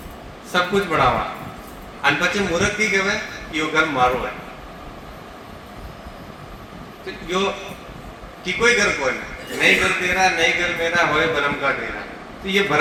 सब कुछ बनावा, अन पचे मूर्ख की कहे यो घर मारो है, तो यो की कोई घर कोई नहीं, घर तेरा नहीं घर मेरा होए भरम का डेरा। तो ये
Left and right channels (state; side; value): identical; both; correlation 1.00